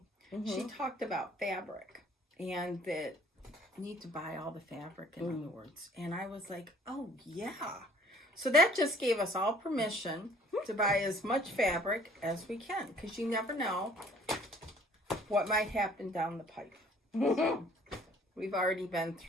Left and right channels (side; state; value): both; normal; correlation 0.56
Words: she talked about fabric and that. Need to buy all the fabric, in other words. And I was like, oh yeah. So that just gave us all permission to buy as much fabric as we can, because you never know what might happen down the pipe. So we've already been